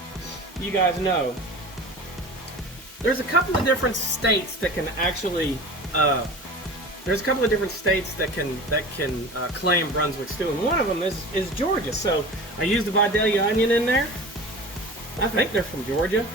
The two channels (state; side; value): normal; both; correlation 0.36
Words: you guys know, there's a couple of different states that can actually claim Brunswick stew, and one of them is Georgia. So I used the Vidalia onion in there. I think they're from Georgia.